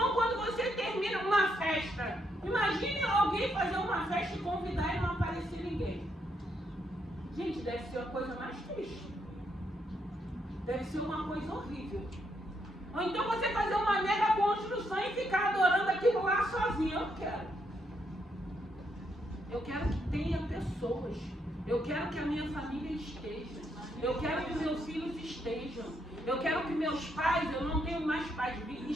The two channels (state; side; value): normal; both; correlation 0.77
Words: quando você termina uma festa. Imagine alguém fazer uma festa e convidar e não aparecer ninguém. Gente, deve ser a coisa mais triste. Deve ser uma coisa horrível. Ou então você fazer uma mega construção e ficar adorando aquilo lá sozinho. Eu não quero. Eu quero que tenha pessoas. Eu quero que a minha família esteja. Eu quero que meus filhos estejam. Eu quero que meus pais, eu não tenho mais pais,